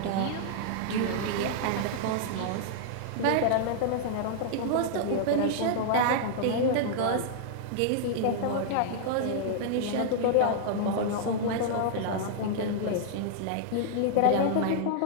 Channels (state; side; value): different; both; correlation -0.01